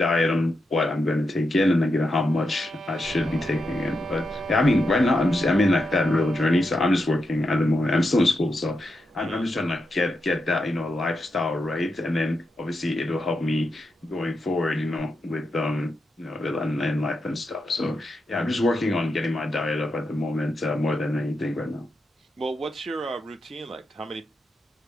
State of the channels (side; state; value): both; normal; correlation 0.86